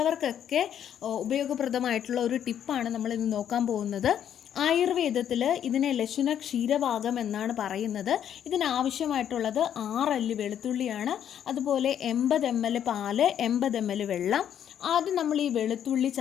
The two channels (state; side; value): quieter; right; 9.6 dB